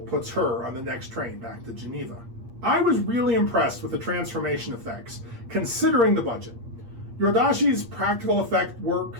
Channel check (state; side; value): late; left; 8.5 ms